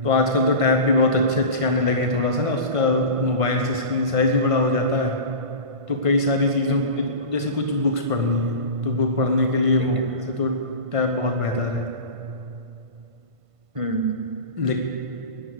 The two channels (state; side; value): late; left; 1.5 ms